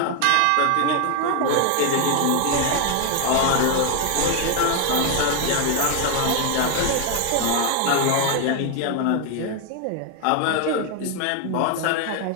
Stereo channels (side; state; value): both; different; correlation 0.01